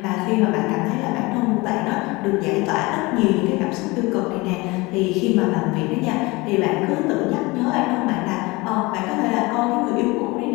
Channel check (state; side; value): quieter; right; 23.6 dB